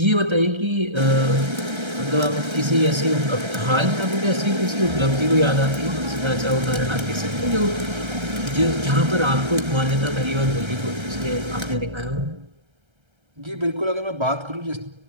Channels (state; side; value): late; left; 1.3 ms